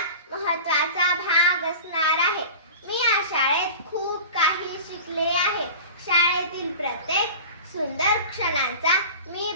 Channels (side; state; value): both; inverted; correlation -0.36